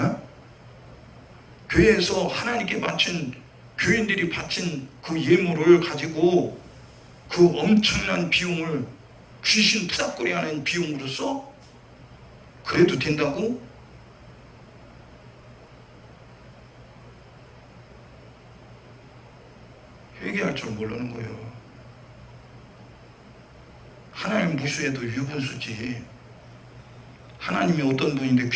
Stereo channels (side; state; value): both; identical; correlation 1.00